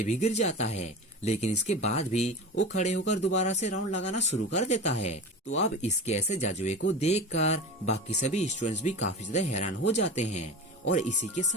भी गिर जाता है, लेकिन इसके बाद भी वो खड़े होकर दोबारा से राउंड लगाना शुरू कर देता है। तो अब इसके ऐसे जज्बे को देखकर बाकी सभी स्टूडेंट्स भी काफी ज्यादा हैरान हो जाते हैं और इसी के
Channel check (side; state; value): both; normal; correlation 0.30